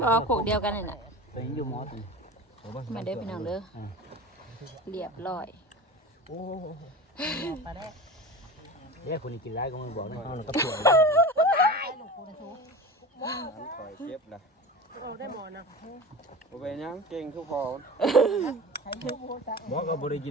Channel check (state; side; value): normal; both; correlation 0.32